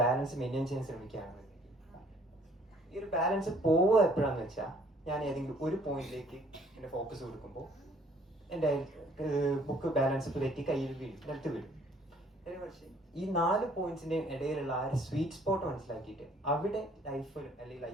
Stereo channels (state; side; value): normal; both; correlation 0.59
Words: ബാലൻസ് മെയിൻറ്റെയിൻ ചെയ്യാൻ ശ്രമിക്കുകയാണ്. ഈ ഒരു ബാലൻസ് പോവുക എപ്പോഴാന്ന് വെച്ചാൽ ഞാൻ ഏതെങ്കിലും ഒരു പോയിന്റിലേക്ക് എൻ്റെ ഫോക്കസ് കൊടുക്കുമ്പോൾ എൻ്റെ ബുക്ക് ബാലൻസ് തെറ്റി കയ്യിൽ വീഴും, നിലത്ത് വീഴും. പക്ഷേ ഈ 4 പോയിന്റ്സിന്റെ ഇടയിലുള്ള ആ ഒരു സ്വീറ്റ് സ്പോട്ട് മനസ്സിലാക്കിയിട്ട് അവിടെ ലൈഫ് അല്ലെങ്കിൽ